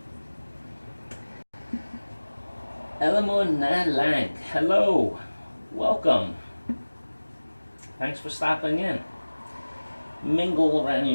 Elamo Nalang, hello, welcome. Thanks for stopping in. Mingle around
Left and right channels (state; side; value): inverted; both; correlation -1.00